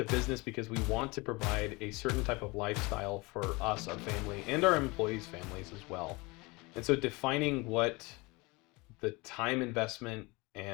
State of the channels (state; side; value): quieter; right; 25.0 dB